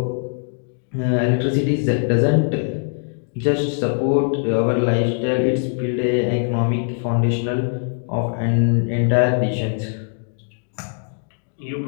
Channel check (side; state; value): right; silent; digital silence